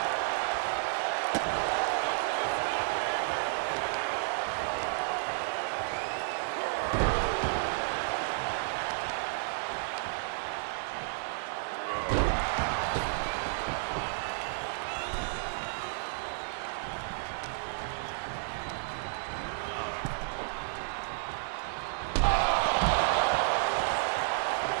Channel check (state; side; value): silent; left; digital silence